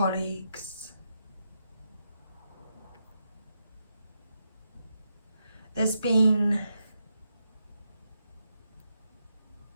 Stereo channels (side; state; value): both; inverted; correlation -0.83